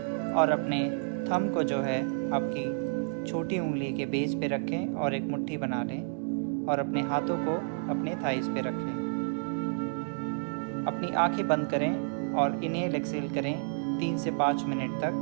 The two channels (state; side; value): silent; left; 58 dB below the other